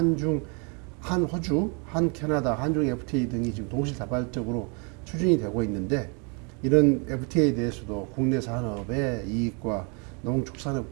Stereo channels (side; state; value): left; quieter; 35.1 dB